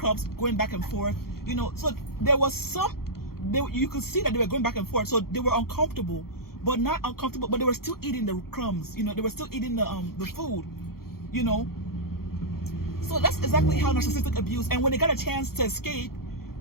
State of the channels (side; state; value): right; late; 0.94 ms